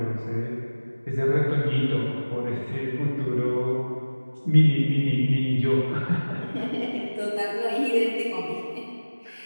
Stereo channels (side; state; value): both; inverted; correlation -1.00